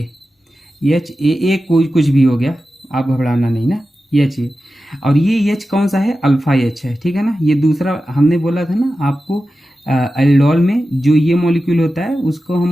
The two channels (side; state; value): both; normal; correlation 0.93